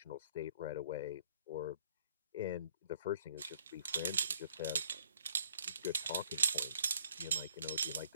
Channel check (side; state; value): both; inverted; correlation -0.61